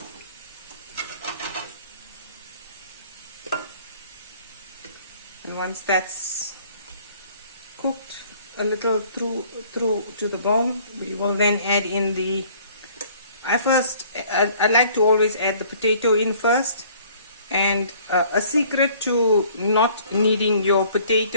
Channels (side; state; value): both; inverted; correlation -0.56